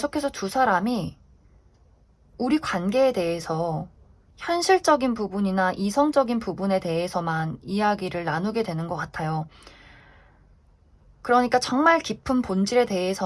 두 사람이 우리 관계에 대해서 현실적인 부분이나 이성적인 부분에 대해서만 이야기를 나누게 되는 것 같아요. 그러니까 정말 깊은 본질에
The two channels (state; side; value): identical; both; correlation 1.00